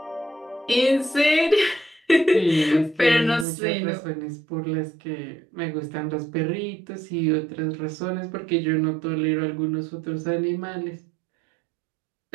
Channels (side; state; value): left; drops out; at 3.5 s